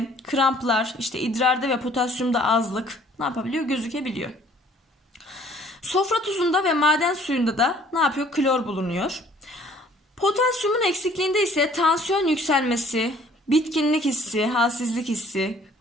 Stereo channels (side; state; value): both; normal; correlation 0.57